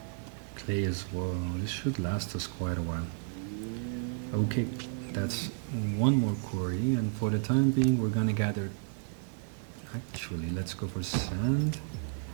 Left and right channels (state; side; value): silent; left; 56 dB below the other